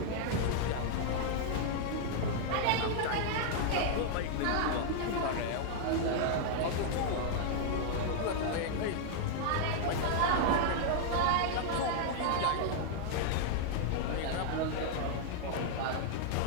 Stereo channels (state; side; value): different; both; correlation -0.01